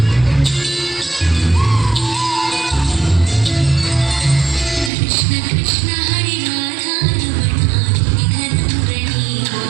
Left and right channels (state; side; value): drops out; left; at 4.9 s